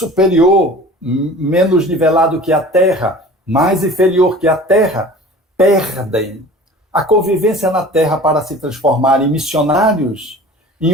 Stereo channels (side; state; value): both; normal; correlation 0.42